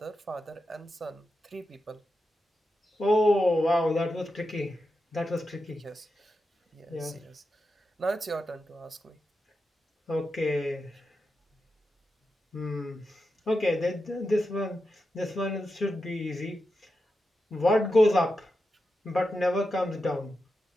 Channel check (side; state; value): both; normal; correlation 0.89